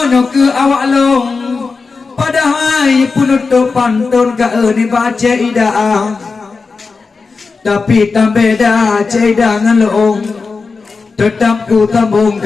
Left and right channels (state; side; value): quieter; right; 4.5 dB